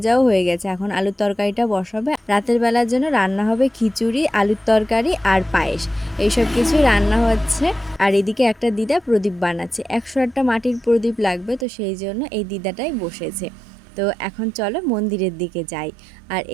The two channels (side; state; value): left; drops out; at 11.7 s